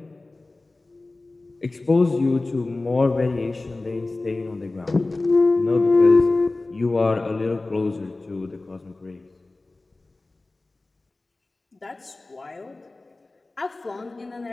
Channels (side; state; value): right; quieter; 3.1 dB